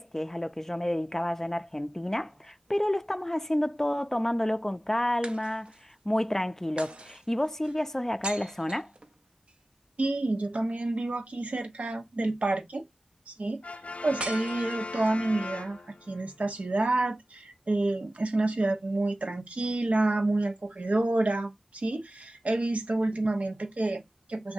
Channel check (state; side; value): normal; both; correlation 0.96